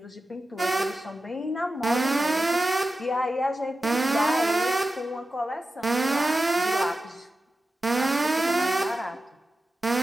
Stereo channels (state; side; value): normal; both; correlation 0.93